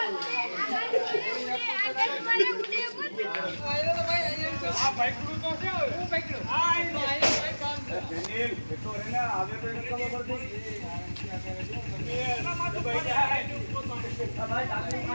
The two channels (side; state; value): both; inverted; correlation -1.00